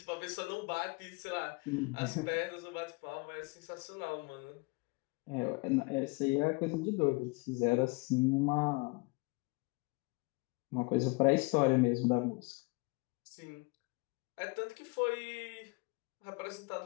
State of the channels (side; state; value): right; quieter; 28.1 dB